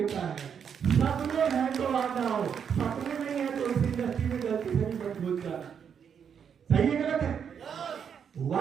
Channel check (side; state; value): left; quieter; 7.5 dB